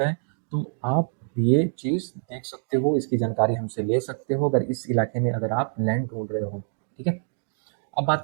तो आप ये चीज़ देख सकते हो, इसकी जानकारी हमसे ले सकते हो अगर इस इलाके में अगर आप लैंड ढूंढ रहे हो, ठीक है। अब बात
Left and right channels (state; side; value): silent; left; digital silence